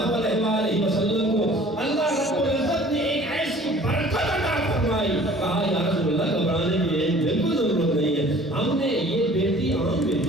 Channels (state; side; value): normal; both; correlation 0.50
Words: علیہ وآلہ وسلم کو اللہ رب العزت نے ایک ایسی برکت عطا فرمائی، کہا یا رسول اللہ گھبرانے کی بالکل ضرورت نہیں ہے، ہم نے یہ بیٹی عام